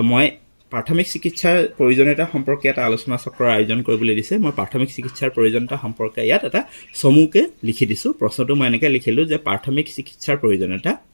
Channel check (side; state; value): both; inverted; correlation -1.00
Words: মই প্ৰাথমিক চিকিৎসাৰ প্ৰয়োজনীয়তা সম্পৰ্কে এটা আলোচনা চক্ৰৰ আয়োজন কৰিবলৈ দিছে। মই প্ৰাথমিক চিকিৎসাৰ প্ৰয়োজনীয়তা সম্পৰ্কে ইয়াত এটা চমুকৈ লিখি দিছোঁ। প্ৰশ্নটো মই এনেকৈ লিখিলোঁ যে প্ৰাথমিক চিকিৎসাৰ প্ৰয়োজনীয়তা